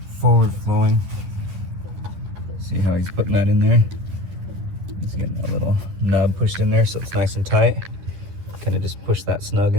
forward flowing. See how he's putting that in there? He's getting a little nub pushed in there so it's nice and tight. Kind of just push that snug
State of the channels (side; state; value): left; late; 11 ms